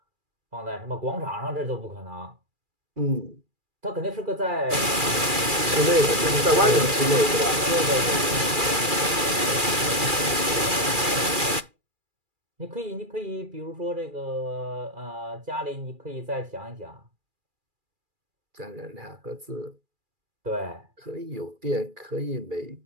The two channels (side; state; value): left; late; 2.4 ms